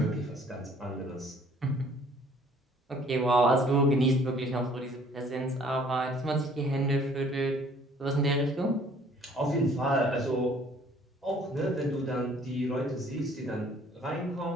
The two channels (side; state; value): both; normal; correlation 0.57